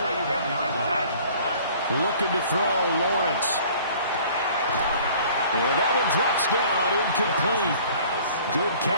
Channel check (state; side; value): inverted; both; correlation -0.51